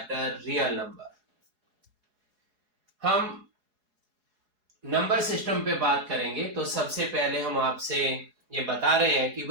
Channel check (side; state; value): left; late; 4.8 ms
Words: real number. हम नंबर सिस्टम पे बात करेंगे। तो सबसे पहले हम आपसे ये बता रहे हैं कि